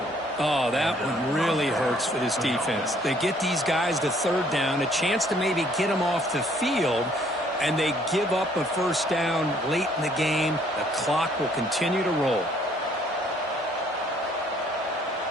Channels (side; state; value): both; normal; correlation 0.63